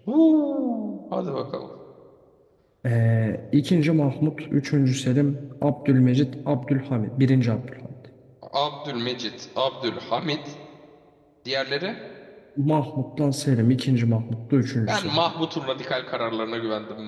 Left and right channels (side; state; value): both; identical; correlation 1.00